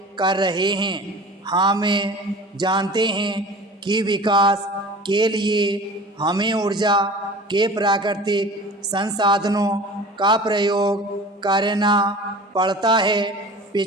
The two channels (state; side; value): normal; both; correlation 0.40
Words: कर रहे हैं। हम जानते हैं कि विकास के लिए हमें ऊर्जा के प्राकृतिक संसाधनों का प्रयोग करना पड़ता है।